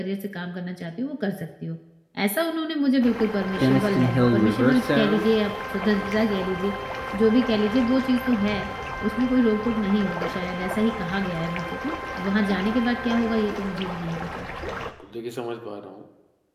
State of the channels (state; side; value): identical; both; correlation 1.00